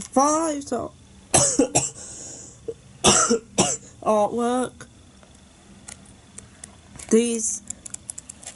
5 so artwork. These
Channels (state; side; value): identical; both; correlation 1.00